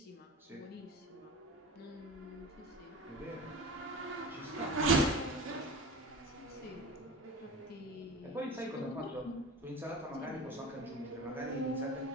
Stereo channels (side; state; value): both; normal; correlation 0.33